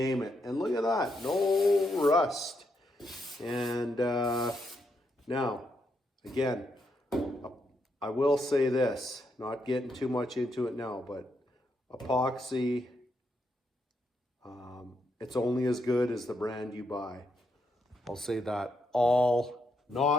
it. And look at that. No rust. And now, again, I will say this. Not getting too much into it now, but epoxy, it's only as good as the brand you buy. I'll say that.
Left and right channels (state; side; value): normal; both; correlation 0.79